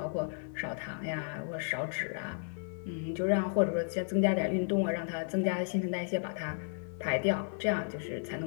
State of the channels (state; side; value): silent; right; digital silence